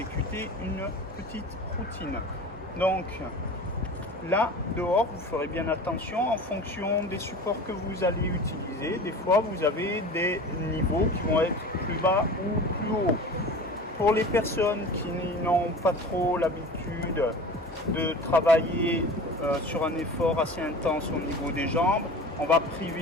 une petite routine. Donc là dehors vous ferez bien attention en fonction des supports que vous allez utiliser. Des fois vous avez des niveaux qui vont être plus bas ou plus hauts. Pour les personnes qui n'ont pas trop l'habitude de travailler sur un effort assez intense au niveau des jambes, on va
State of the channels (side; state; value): both; normal; correlation 0.37